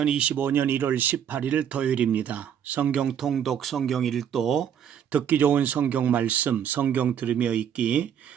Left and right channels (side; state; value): left; quieter; 8.9 dB